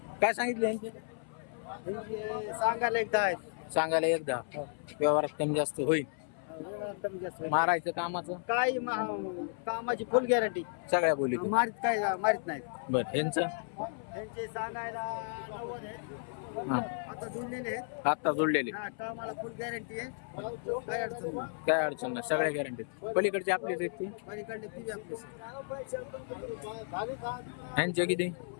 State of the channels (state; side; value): silent; right; 55 dB below the other